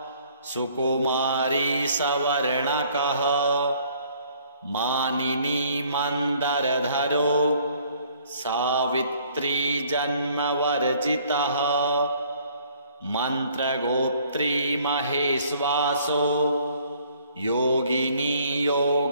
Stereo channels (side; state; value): both; inverted; correlation -0.60